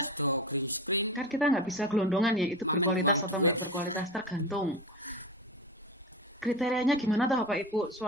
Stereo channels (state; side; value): normal; both; correlation 0.25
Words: do green screen. Kan kita nggak bisa gelondongan ya, itu berkualitas atau duit. berkualitas tergantung. Kriterianya gimana tuh Bapak Ibu,